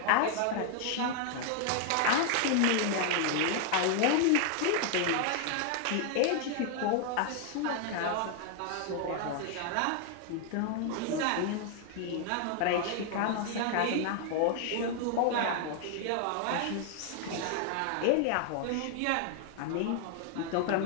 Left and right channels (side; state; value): both; different; correlation 0.00